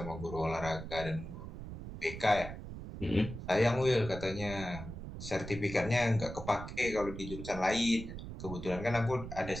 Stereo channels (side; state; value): right; noise; rumble, 9 dB below the sound